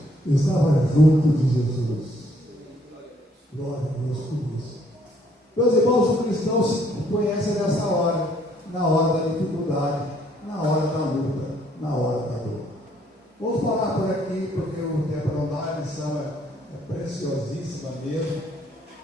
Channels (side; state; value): both; normal; correlation 0.65